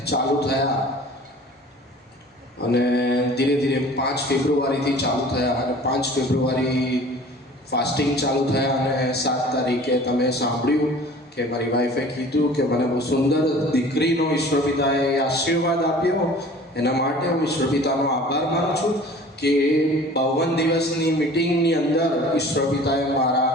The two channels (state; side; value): normal; both; correlation 0.46